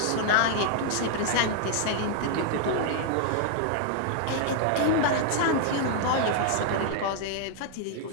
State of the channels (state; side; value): different; both; correlation -0.01